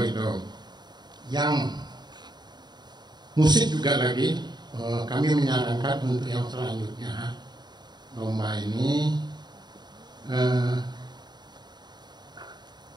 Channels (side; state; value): left; late; 0.21 ms